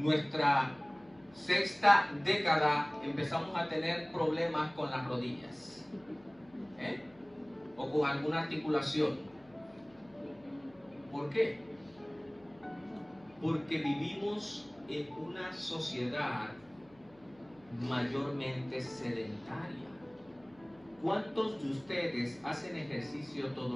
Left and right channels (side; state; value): left; noise; hum, 28 dB below the sound